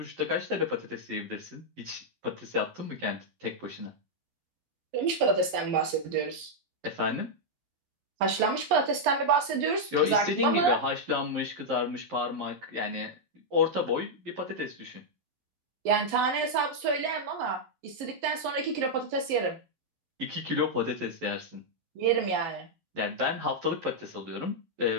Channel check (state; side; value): late; left; 11 ms